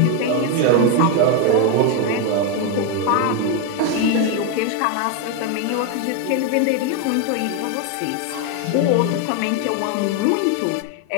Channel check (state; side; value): different; both; correlation 0.02